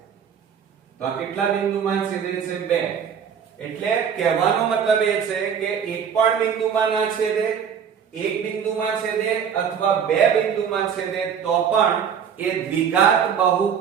તો આ કેટલા બિંદુમાં છેદે છે, 2. એટલે કહેવાનો મતલબ એ છે કે એક પણ બિંદુમાં ના છેદે, એક બિંદુમાં છેદે અથવા બે બિંદુમાં છેદે તો પણ એ દ્વિઘાત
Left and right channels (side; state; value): left; quieter; 7.6 dB